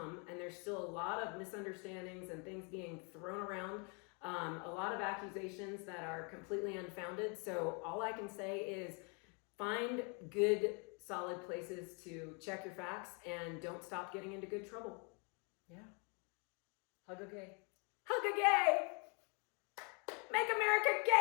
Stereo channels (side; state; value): right; quieter; 35.0 dB